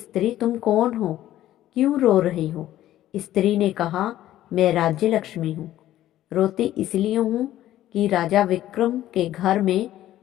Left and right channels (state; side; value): quieter; right; 13.5 dB